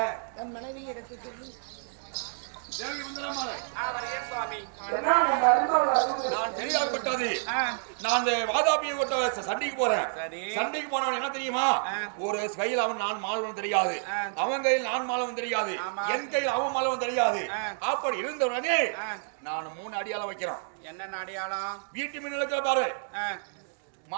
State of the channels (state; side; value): silent; left; digital silence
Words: என் மனைவி எடுத்து தேவி வந்தனமாலை வருகிறேன் சுவாமி. நான் தெரியாதப்பட்டது நான் அந்த வாதாபியை கொட்ட சண்டைக்கு போறேன். சரி. சண்டைக்கு போனவன் என்ன தெரியுமா, ஒரு கையில் அவன் நான் மாலவன் தெரியாது, அவன் கையில் நான் மாலவன் தெரியாது, என் கையில் அவன் மாலவன் தெரியாது. அப்படி இருந்தவனே நான் 3 அடியாளம் வைக்கிறான். என்ன அடையாளம்? வீட்டு மின்னலுக்கு பாரு,